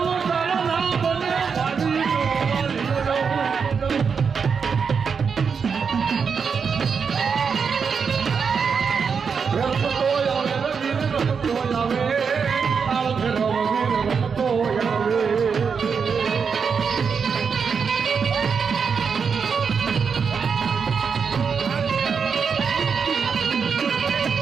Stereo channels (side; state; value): left; quieter; 6.0 dB